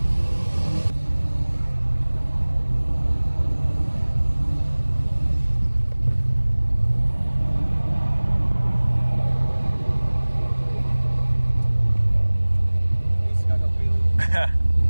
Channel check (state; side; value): inverted; both; correlation -1.00